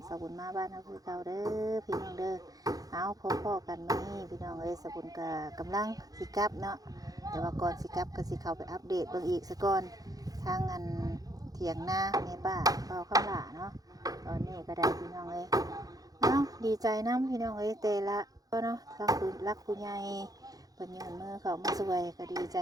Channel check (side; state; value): left; late; 0.18 ms